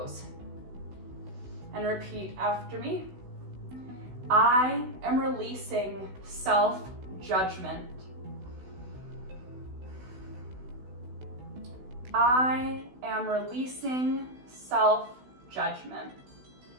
And repeat after me. I am releasing self-judgment. I am releasing self-judgment.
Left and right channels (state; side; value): late; left; 16 ms